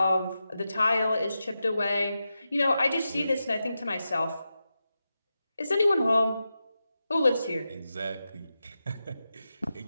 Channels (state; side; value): inverted; both; correlation -0.90